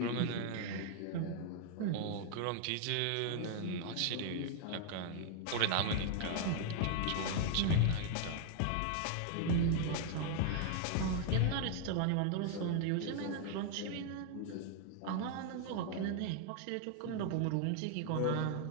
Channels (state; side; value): different; both; correlation 0.00